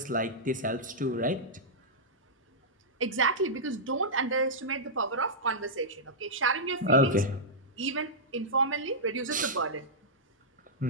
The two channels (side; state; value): both; normal; correlation -0.11